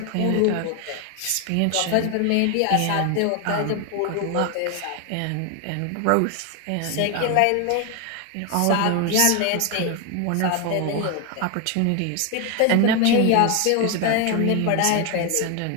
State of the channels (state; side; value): different; both; correlation 0.01